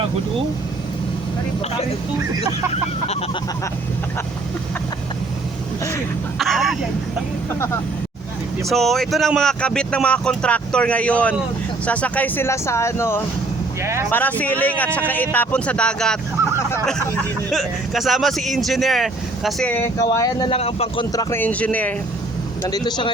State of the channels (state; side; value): quieter; left; 3.0 dB